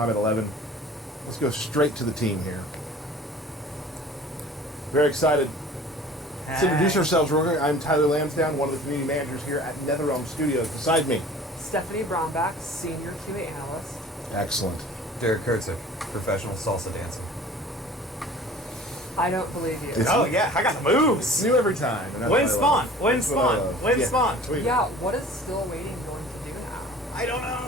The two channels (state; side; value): normal; both; correlation 0.46